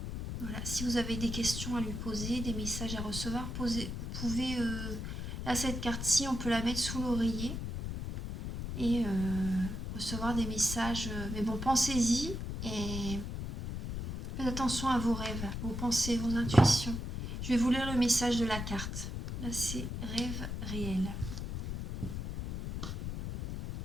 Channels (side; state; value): left; noise; rumble, 5 dB below the sound